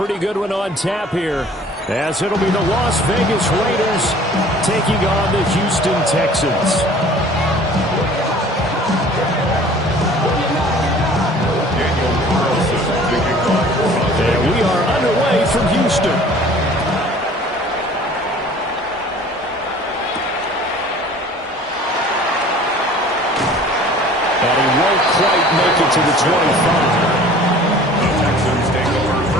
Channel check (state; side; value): normal; both; correlation 0.48